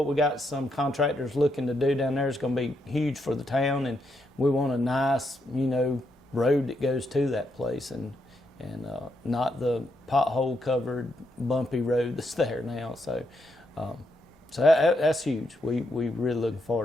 we got some contractors looking to do down there is going to be huge for the town, and we want a nice, you know, road that goes to that place, and not the pothole covered bumpy road that's there now. So that's huge. We really looking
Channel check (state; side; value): normal; both; correlation 0.79